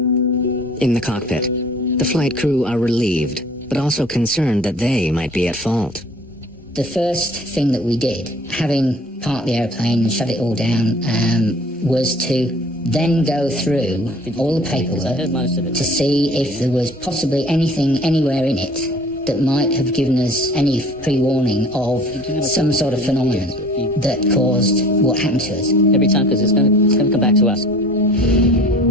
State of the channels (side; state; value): both; normal; correlation 0.48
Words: In the cockpit, the flight crew are relieved, but also concerned that they might be at fault. The first thing that we did, having parked the airplane and shut it all down, was to then go through all the paperwork to see if there was possibly anything anywhere in it that might have given us any pre-warning of some sort of phenomenon that caused what happened to us. Every time, because it's going to come back to us.